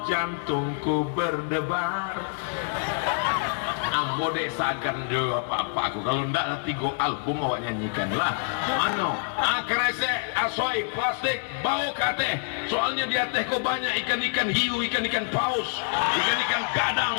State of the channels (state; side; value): silent; right; 61 dB below the other